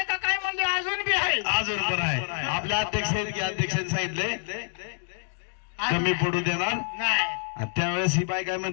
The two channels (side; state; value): right; silent; 60 dB below the other